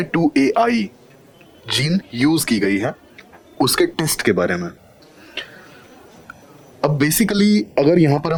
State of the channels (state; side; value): identical; both; correlation 1.00